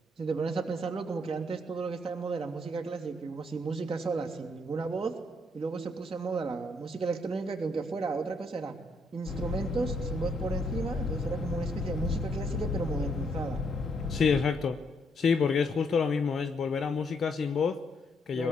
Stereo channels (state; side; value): normal; both; correlation 0.73